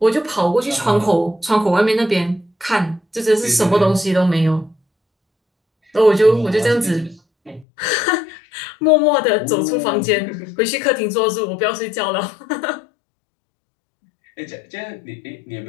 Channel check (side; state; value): right; drops out; at 7.7 s